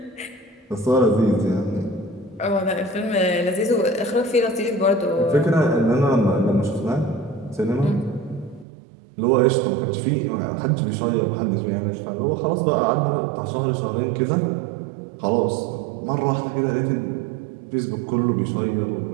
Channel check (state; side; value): drops out; left; at 8.7 s